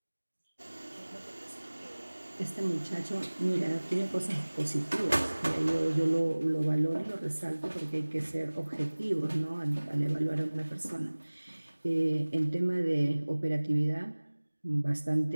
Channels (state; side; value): inverted; both; correlation -1.00